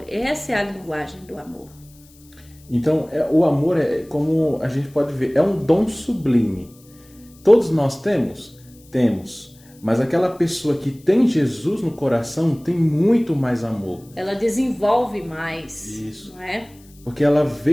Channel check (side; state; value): left; noise; hiss, 27 dB below the sound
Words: essa é a linguagem do amor. Então, o amor como a gente pode ver, é um dom sublime. Todos nós temos? Temos. Mas aquela pessoa que tem Jesus no coração tem muito mais amor. Ela desenvolve mais. Isso. Não é? Porque ela